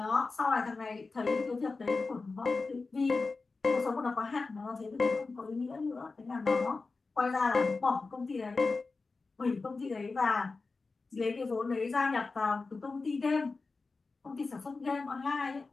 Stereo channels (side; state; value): right; quieter; 4.0 dB